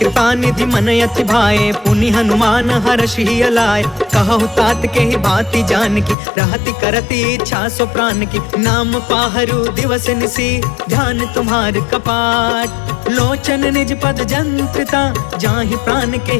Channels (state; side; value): drops out; right; at 6.2 s